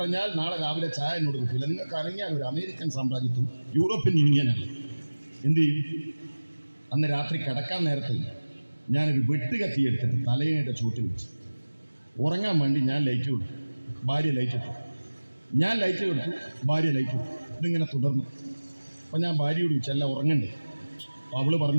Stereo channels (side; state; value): both; inverted; correlation -1.00